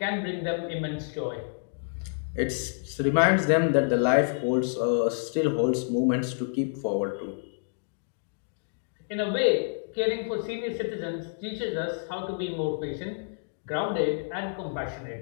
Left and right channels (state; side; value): silent; right; digital silence